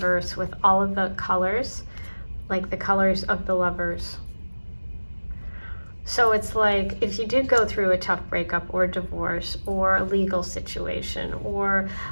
with all of the colors, like the colors of the Lovers. So it's like if you did go through a tough breakup or divorce or a legal situation or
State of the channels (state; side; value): inverted; both; correlation -1.00